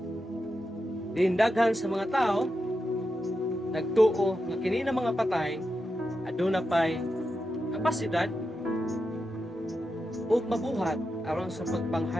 Daghan sa mga tao nagtuo nga kini na mga patay aduna pay kapasidad ug mabuhat aron sa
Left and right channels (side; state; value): both; normal; correlation 0.88